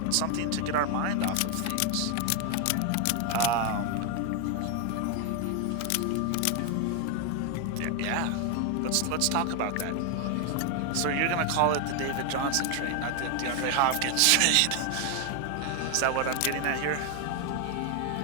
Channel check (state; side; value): different; both; correlation 0.01